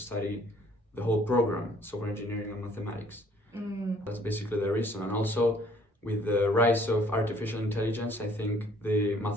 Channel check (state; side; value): normal; both; correlation 0.59